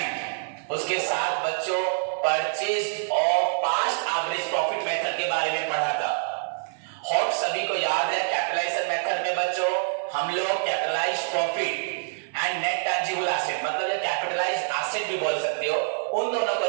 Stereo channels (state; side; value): silent; left; 57 dB below the other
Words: उसके साथ बच्चों purchase of past average profit method के बारे में पढ़ा था। होप सभी को याद है कैपिटलाइजेशन मेथड में बच्चों हम लोग capitalised profit and net tangible asset मतलब ये कैपिटलाइज्ड एसेट भी बोल सकते हो, उन दोनों को